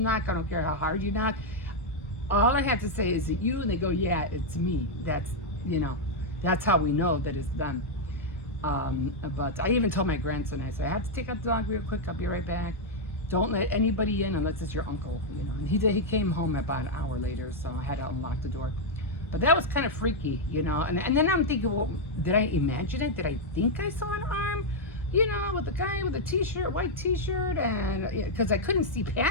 I don't care how hard you knock. All I have to say, is it you? And they go, yeah, it's me. That's how we know that it's done. But I even told my grandson, I said, I have to take out the dog real quick. I'll be right back. Don't let anybody in unless it's your uncle, And he came home about an hour later, so I had to unlock the door. But that was kind of freaky, And then I'm thinking, well, did I imagine it? Did I think I saw an arm, with a guy with a t-shirt, white t-shirt, and because I couldn't see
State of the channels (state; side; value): normal; both; correlation -0.02